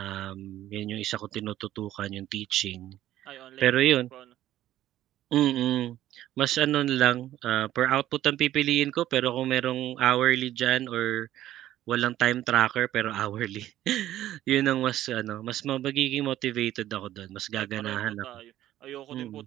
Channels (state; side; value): quieter; left; 13.4 dB